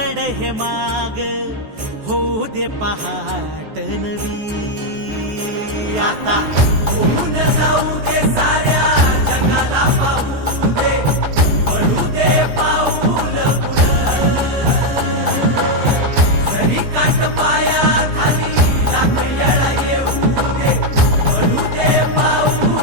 हे माग होऊ दे पहाट नवी. आता होऊन जाऊ दे साऱ्या जगाला पाहू दे पडू दे पाऊल जरी काट पाया खाली लाकड्याला येऊ दे पडू दे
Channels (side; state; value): left; late; 14 ms